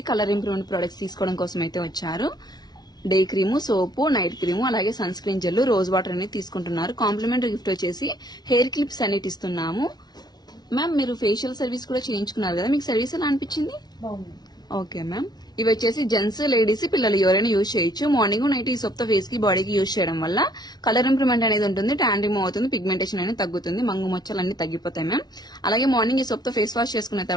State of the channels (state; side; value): late; right; 0.19 ms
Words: కలర్ ఇంప్రూవ్మెంట్ ప్రొడక్ట్స్ తీసుకోవడం కోసం అయితే వచ్చారు. Day cream, soap, night cream, అలాగే sun screen gel, rose water అనేది తీసుకుంటున్నారు. కాంప్లిమెంటరీ గిఫ్ట్ వచ్చేసి హెయిర్ క్లిప్స్ అనేది ఇస్తున్నాము. మ్యామ్ మీరు ఫేషియల్ సర్వీస్ కూడా చేయించుకున్నారు కదా, మీకు సర్వీస్ ఎలా అనిపించింది? Okay ma'am. ఇవి వచ్చేసి జెంట్స్, లేడీస్, పిల్లలు ఎవరైనా యూజ్ చేయొచ్చు. మార్నింగ్ నైట్ ఈ సోప్ తో ఫేస్ కి, బాడీకి యూజ్ చేయడం వల్ల కలర్ ఇంప్రూవ్మెంట్ అనేది ఉంటుంది, ట్యాన్ రిమూవ్ అవుతుంది, పిగ్మెంటేషన్ అనేది తగ్గుతుంది, మంగు మచ్చలు అన్ని తగ్గిపోతాయి మ్యామ్. అలాగే మార్నింగ్ ఈ సోప్ తో ఫేస్ వాష్ చేసుకున్న